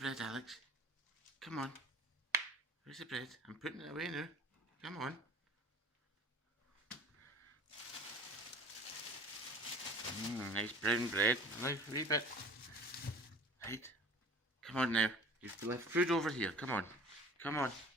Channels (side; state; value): both; normal; correlation 0.43